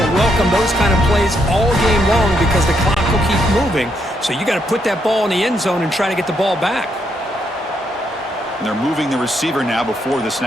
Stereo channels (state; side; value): normal; both; correlation 0.77